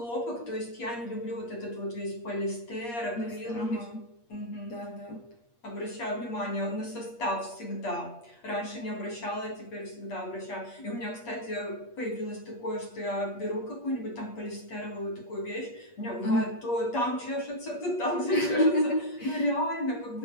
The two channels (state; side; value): late; right; 8.5 ms